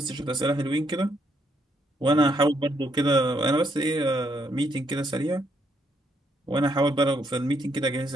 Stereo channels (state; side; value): normal; both; correlation 0.75